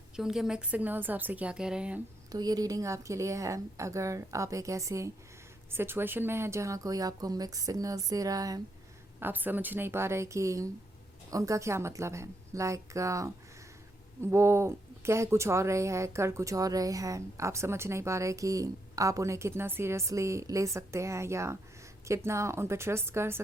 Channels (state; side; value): normal; both; correlation 0.79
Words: कि उनके मिक्स सिग्नल्स आपसे क्या कह रहे हैं। तो ये रीडिंग आपके लिए है अगर आप एक ऐसे सिचुएशन में हैं जहाँ कोई आपको मिक्स सिग्नल्स दे रहा है, आप समझ नहीं पा रहे कि उनका क्या मतलब है। लाइक वो कह कुछ और रहे हैं, कर कुछ और रहे हैं, आप समझ नहीं पा रहे कि आप उन्हें कितना सीरियसली ले सकते हैं या कितना उन पर ट्रस्ट कर